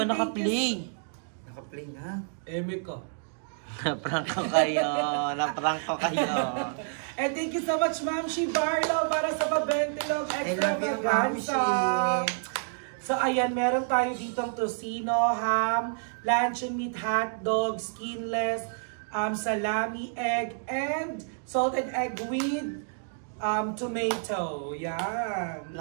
naka-play. Naka-play na. Eme ka. Naprank ko kayo. And thank you so much, Ma'am Shi Barlow, para sa pa-Ventilog I Extra love you, Ma'am Vaganza. Shi. So So ayan, meron tayo ditong tocino, ham, luncheon meat, hotdog, skinless, salami, egg, and salted egg with tomato. Yan.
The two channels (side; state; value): left; silent; digital silence